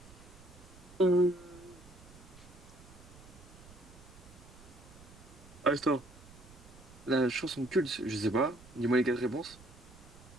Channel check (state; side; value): noise; right; rumble, 21 dB below the sound